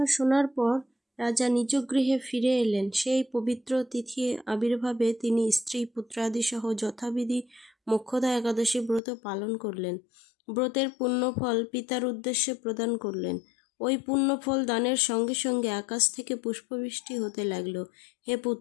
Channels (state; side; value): drops out; right; at 9.0 s